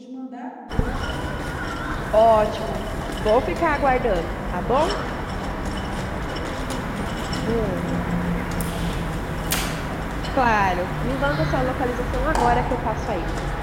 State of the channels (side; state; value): both; identical; correlation 1.00